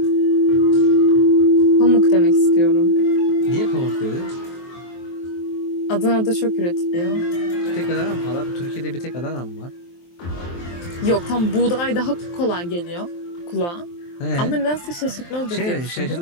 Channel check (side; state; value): right; late; 23 ms